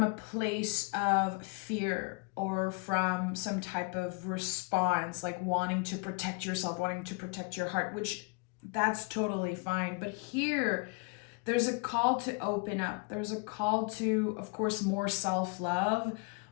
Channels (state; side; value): quieter; right; 31.5 dB